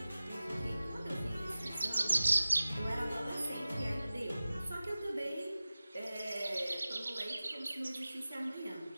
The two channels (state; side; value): inverted; both; correlation -0.96